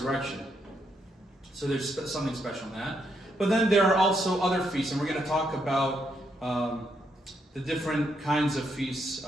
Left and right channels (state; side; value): normal; both; correlation 0.77